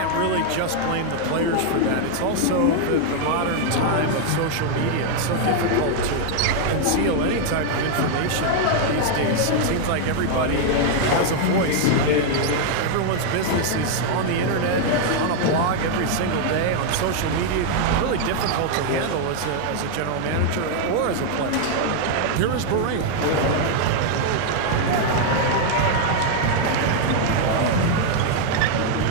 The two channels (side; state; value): both; different; correlation 0.00